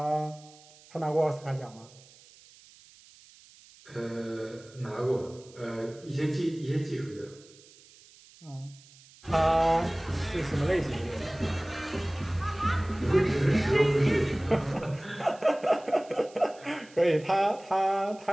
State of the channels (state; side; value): noise; right; hiss, 24 dB below the sound